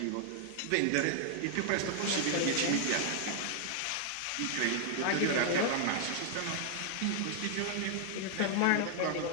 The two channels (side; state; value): both; different; correlation 0.00